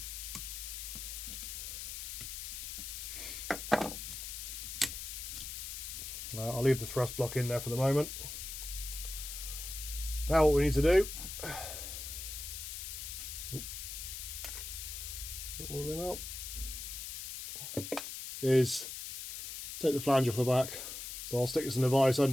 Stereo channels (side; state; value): left; noise; hiss, 7 dB below the sound